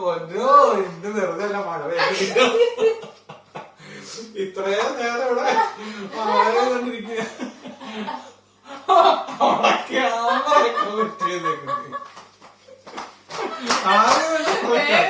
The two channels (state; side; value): identical; both; correlation 1.00